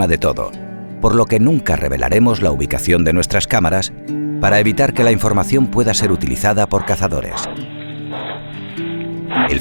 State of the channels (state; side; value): inverted; both; correlation -1.00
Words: de todo, por lo que nunca revelaremos la ubicación de nuestras cámaras para evitar que la información pueda ser utilizada por cazadores. El